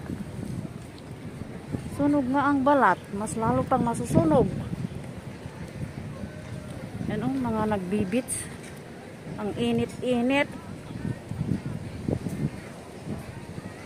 Sunog nga ang balat, mas lalo pang masusunog. Yan o, mga nagbibits. Ang init-init.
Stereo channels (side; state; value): both; identical; correlation 1.00